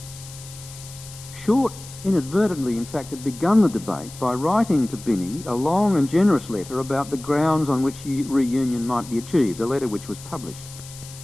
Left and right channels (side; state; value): left; noise; hiss, 16 dB below the sound